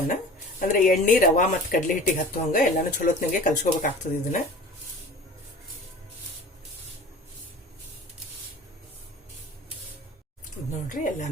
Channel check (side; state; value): both; normal; correlation 0.41